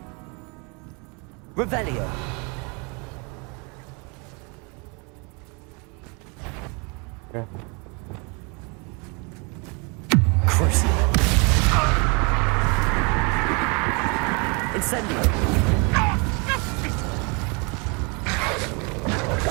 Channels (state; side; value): quieter; left; 32.0 dB